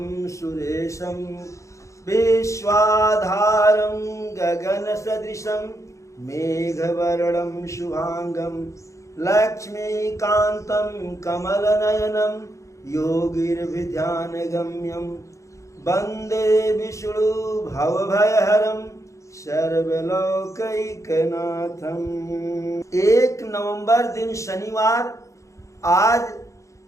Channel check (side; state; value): right; late; 0.15 ms